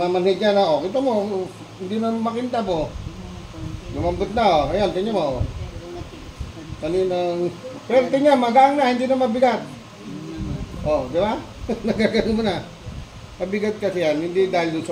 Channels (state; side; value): identical; both; correlation 1.00